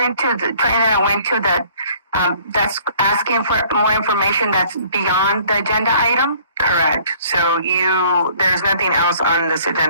to the training that I went to, that's asking for more information that's beyond the agenda item. correct. So there's nothing else on this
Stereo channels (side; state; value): both; inverted; correlation -0.56